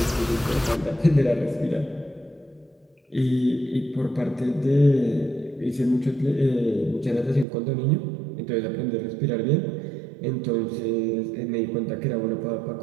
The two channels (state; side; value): drops out; left; at 7.5 s